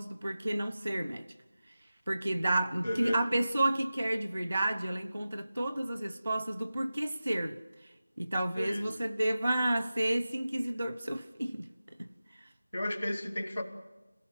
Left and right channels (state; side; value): inverted; both; correlation -0.94